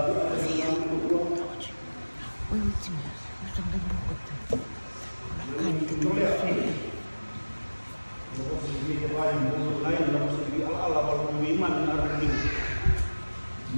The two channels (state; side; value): inverted; both; correlation -1.00